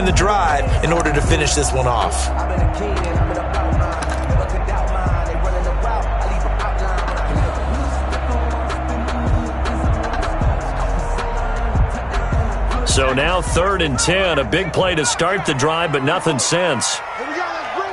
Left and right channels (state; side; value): identical; both; correlation 1.00